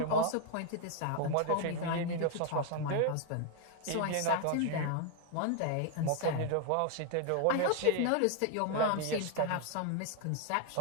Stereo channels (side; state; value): both; different; correlation 0.00